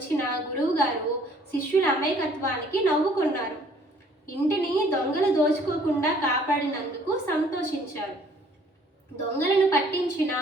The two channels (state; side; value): normal; both; correlation 0.59